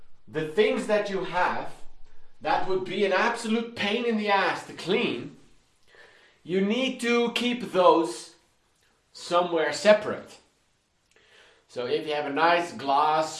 the things that you have that would be an absolute pain in the ass to clean. You need to keep those somewhere separate. So if you have a nice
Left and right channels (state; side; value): identical; both; correlation 1.00